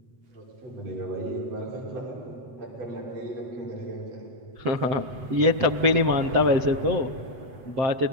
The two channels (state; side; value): late; left; 7.9 ms